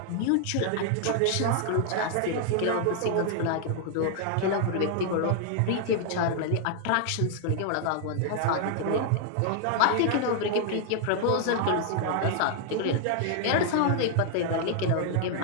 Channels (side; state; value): both; different; correlation 0.00